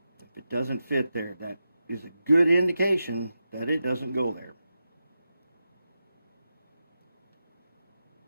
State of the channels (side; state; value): both; inverted; correlation -0.90